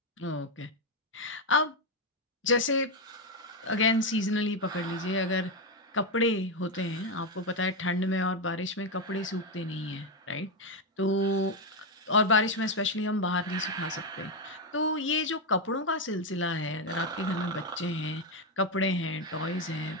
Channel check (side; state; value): both; normal; correlation 0.06